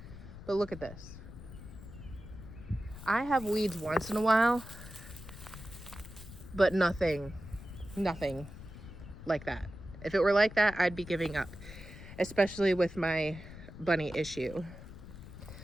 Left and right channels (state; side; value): noise; left; rumble, 14 dB below the sound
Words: But look at this. I have weeds once in a while, but nothing like that. If it were like that, I'd be giving up, especially with my bunny issue.